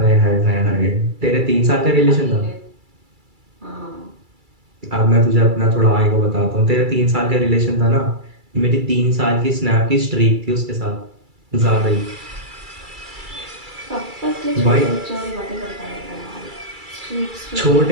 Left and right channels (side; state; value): left; late; 2.3 ms